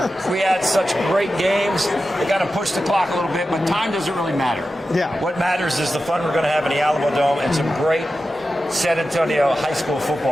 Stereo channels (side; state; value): both; normal; correlation 0.92